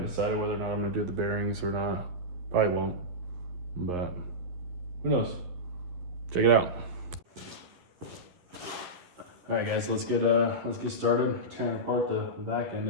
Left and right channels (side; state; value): left; late; 11 ms